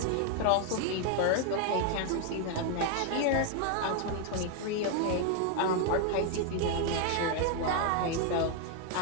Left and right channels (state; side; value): different; both; correlation 0.00